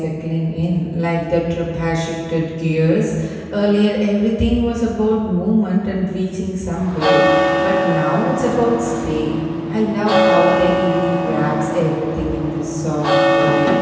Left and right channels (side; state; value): both; identical; correlation 1.00